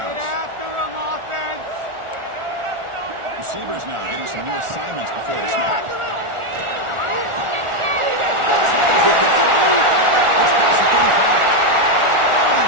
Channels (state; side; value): late; left; 1.4 ms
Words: Receivers now getting some new assignments before the snap.